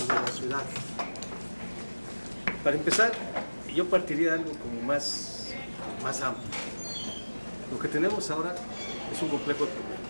de la ciudad. Para empezar, yo partiría de algo como más amplio. Lo que tenemos ahora es un complejo de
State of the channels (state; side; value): inverted; both; correlation -1.00